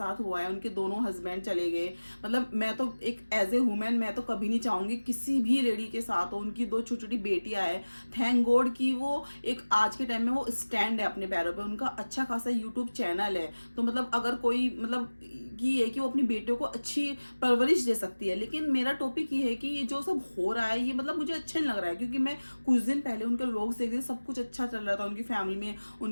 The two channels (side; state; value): both; inverted; correlation -1.00